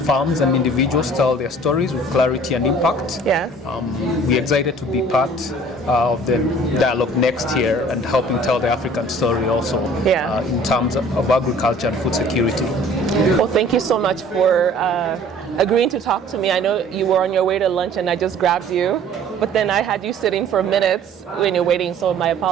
farms and individuals tell their stories with clarity and impact. Yes. We're excited to be part of the dialogue next year and helping tell the African story also in terms of agriculture and food security. Well, thank you so much for agreeing to talk to me. I know you were on your way to lunch and I just grabbed you, but then I had you sitting for minutes when you're waiting, so my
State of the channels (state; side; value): normal; both; correlation 0.51